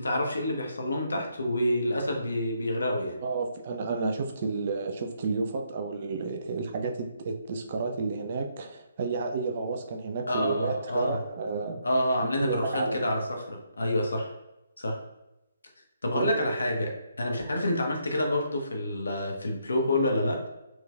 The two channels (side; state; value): both; inverted; correlation -0.73